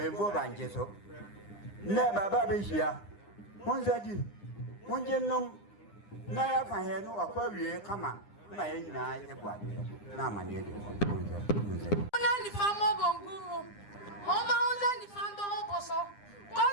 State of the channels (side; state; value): right; late; 9.8 ms